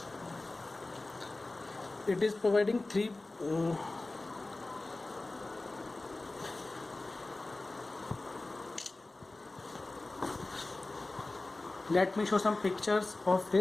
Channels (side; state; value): right; quieter; 3.0 dB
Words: it is providing three let me show some pictures of